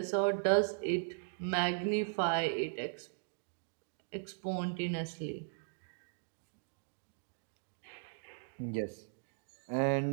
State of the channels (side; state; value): left; silent; digital silence